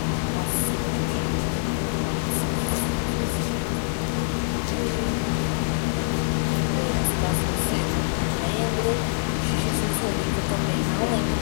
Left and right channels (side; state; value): right; silent; digital silence